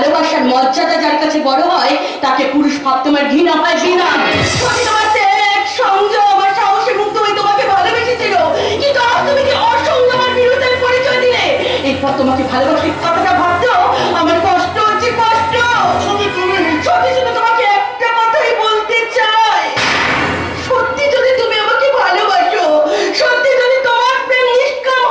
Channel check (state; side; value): identical; both; correlation 1.00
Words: মর্যাদা যার কাছে বড় হয়, তাকে পুরুষ ভাব তোমার ঘৃণা হয়, ঘৃণা। সত্যি তোমার ত্যাগ, সংযম আর সাহসে মুক্ত হয়ে তোমাকে ভালোবেসেছিল, কিন্তু আজ তুমি কি অসংযম আর বিরোধের পরিচয় দিলে? এরপর তোমাকে ভালোবাসি কথাটা ভাবতেও আমার কষ্ট হচ্ছে, কষ্ট। সত্যি শুধু তোমাকে একটা কথাই বলতে চাই, সত্যি যদি তুমি আমাকে ভালোবাসো, সত্যি যদি তোমার প্রেম নিষ্কাম